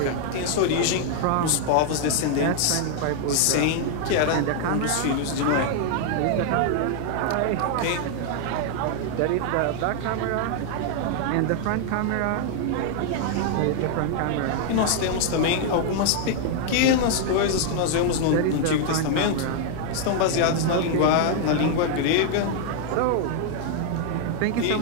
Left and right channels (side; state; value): both; different; correlation 0.00